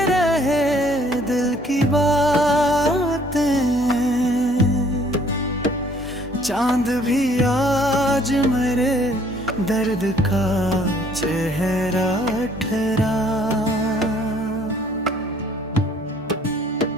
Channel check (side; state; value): both; normal; correlation 0.60